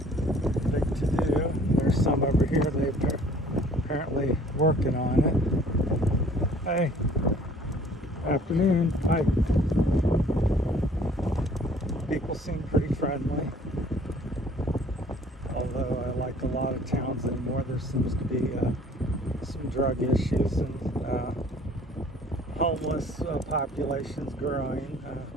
big to do. There's some over here. They're apparently working on it. Hey, afternoon. Hi. People seem pretty friendly. Although I like a lot of towns anymore, there seems to be some drug issues and homeless populations growing.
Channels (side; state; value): both; normal; correlation 0.54